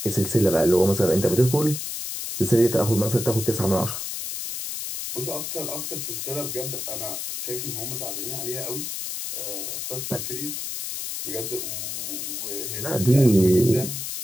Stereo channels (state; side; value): noise; left; hiss, 5 dB below the sound